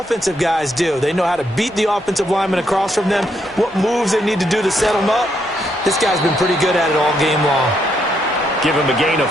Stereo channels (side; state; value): both; normal; correlation 0.76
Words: guys do. They know how to beat the offensive lineman across from them, what moves they need to do to set them up. This guy's been pretty good at it all game long. Give him a gain of